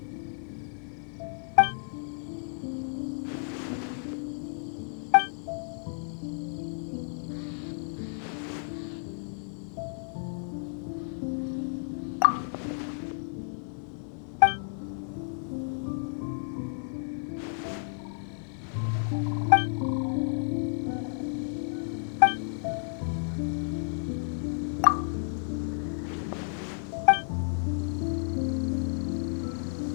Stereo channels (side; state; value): right; silent; 57 dB below the other